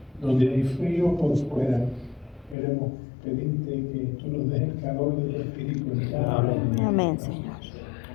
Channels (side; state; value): right; drops out; at 2.6 s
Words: donde hay frío por fuera, queremos pedirte que tú nos des el calor de tu espíritu en cada uno. Amén, Señor.